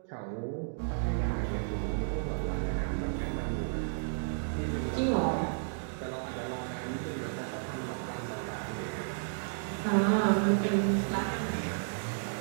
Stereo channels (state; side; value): silent; left; digital silence